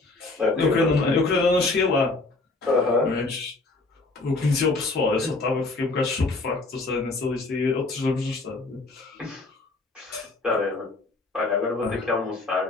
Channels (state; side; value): quieter; right; 3.3 dB